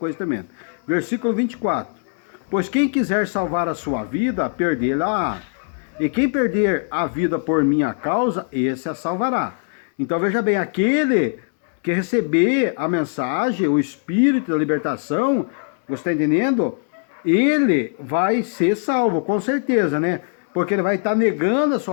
tremenda. Versículo 24. Pois quem quiser salvar a sua vida, perdê-la-á. E quem perder a vida por minha causa, esse a salvará. Então, veja bem, aquele que receber a mensagem, o Espírito da libertação, você está entendendo? Ele vai ser salvo, com certeza, né? Porque ele vai estar negando a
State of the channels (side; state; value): right; silent; digital silence